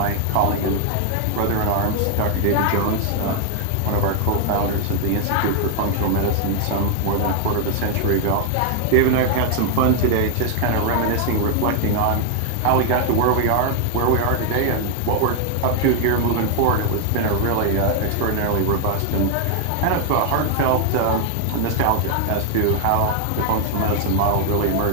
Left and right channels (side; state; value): both; different; correlation 0.00